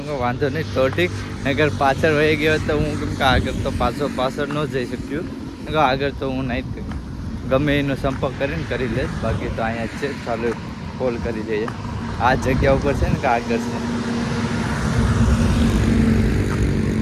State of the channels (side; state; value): both; identical; correlation 1.00